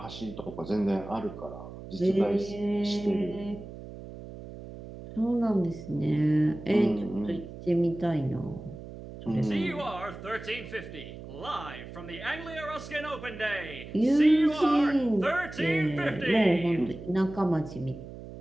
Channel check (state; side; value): noise; right; hum, 13 dB below the sound